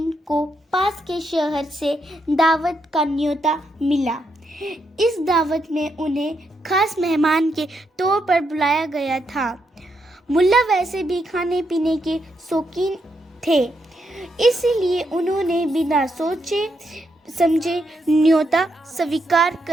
को पास के शहर से दावत का न्योता मिला। इस दावत में उन्हें खास मेहमान के तौर पर बुलाया गया था। मुल्ला वैसे भी खाने पीने के शौकीन थे, इसीलिए उन्होंने बिना सोचे समझे न्योता स्वीकार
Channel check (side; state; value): both; normal; correlation 0.80